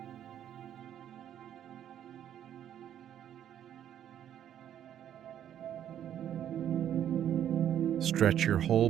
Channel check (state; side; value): quieter; left; 10.3 dB